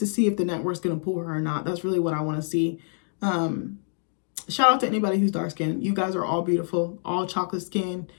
see if the network's gonna pull her or not. That's really what I want to see. Shout out to anybody who's dark skinned. You guys are all beautiful, all chocolate skin.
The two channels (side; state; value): right; silent; digital silence